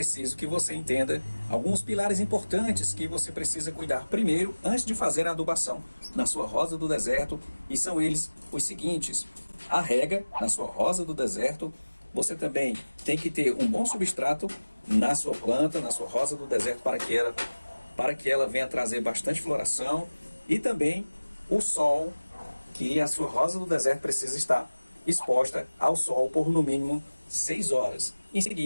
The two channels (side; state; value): both; inverted; correlation -1.00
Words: que você entenda alguns pilares importantes que você precisa cuidar primeiro antes de fazer a adubação na sua rosa do deserto, e são eles os seguintes: a rega na sua rosa do deserto. Você também tem que ter um bom substrato na sua planta, na sua rosa do deserto, para que ela venha trazer bastante floração, e também o sol, que a sua rosa do deserto precisa estar exposta ao sol por no mínimo 6 horas. Em